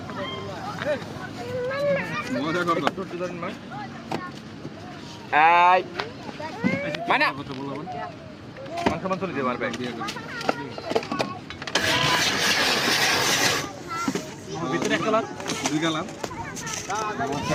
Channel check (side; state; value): both; identical; correlation 1.00